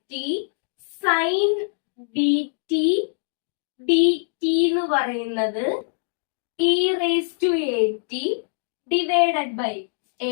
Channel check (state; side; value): silent; right; digital silence